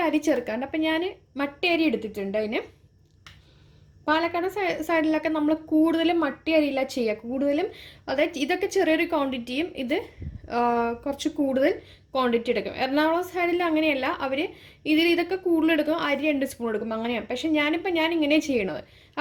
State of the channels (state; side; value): identical; both; correlation 1.00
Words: അരി ചേർക്കാറുണ്ട്. അപ്പം ഞാൻ മട്ടരി അരി എടുത്തിട്ടുണ്ട്. അതിന് പാലക്കാട് സൈഡിലൊക്കെ നമ്മൾ കൂടുതലും മട്ടി അരിയില്ല ചെയ്യുക. കൂടുതലും അതായത് ഇതൊക്കെ ചെറിയൊരു ക്വാണ്ടിറ്റിയും ഇത് കുറച്ച് കൂടുതൽ ക്വാണ്ടിറ്റി എടുക്കും. എറണാകുളം സൈഡിൽ അങ്ങനെയല്ല, അവർ ഇതൊക്കെ കൂടുതൽ എടുക്കും, അരി 2 സ്പൂൺ എടുക്കും, അങ്ങനെയാണ്. പക്ഷെ ഞാൻ ഇങ്ങനെ ചെയ്യണത്.